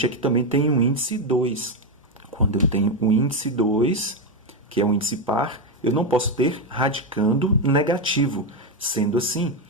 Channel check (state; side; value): normal; both; correlation 0.07